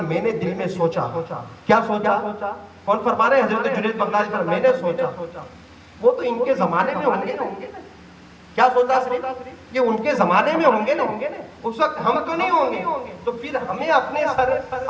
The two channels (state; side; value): identical; both; correlation 1.00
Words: میں نے دل میں سوچا. کیا سوچا؟ کون فرما رہے ہیں؟ حضرت جنید بغدادی فرماتے ہیں میں نے سوچا. وہ تو ان کے زمانے میں ہوں گے. کیا سوچا؟ صرف یہ ان کے زمانے میں ہوں گے نا، اس وقت ہم تو نہیں ہوں گے. تو پھر ہمیں اپنے سر